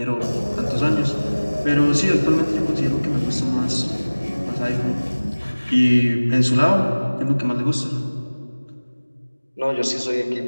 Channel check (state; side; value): inverted; both; correlation -1.00